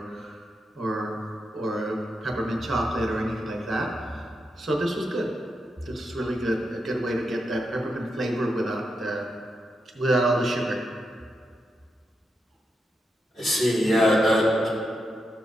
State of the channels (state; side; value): normal; both; correlation 0.85